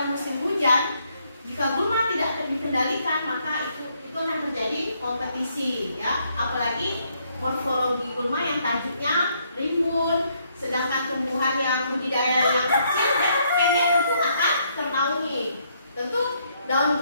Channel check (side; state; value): both; inverted; correlation -0.72